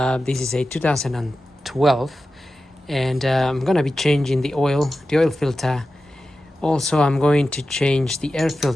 This is a 2012, and I'm gonna be changing the oil filter. Also I'm going to change the air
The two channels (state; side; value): normal; both; correlation 0.93